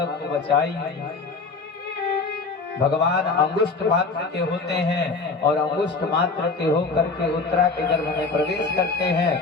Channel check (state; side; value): quieter; right; 4.2 dB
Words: को बचाइए। भगवान अंगुष्ठ मात्र के होते हैं और अंगुष्ठ मात्र के होकर के उत्तरा के गर्भ में प्रवेश करते